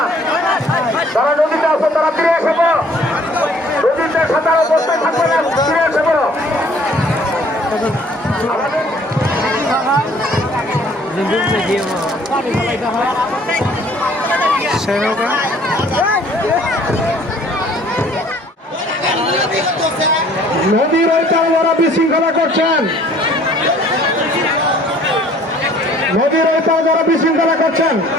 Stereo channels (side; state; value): both; normal; correlation 0.56